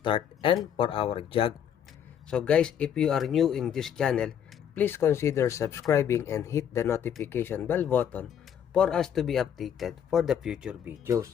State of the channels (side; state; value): right; quieter; 8.8 dB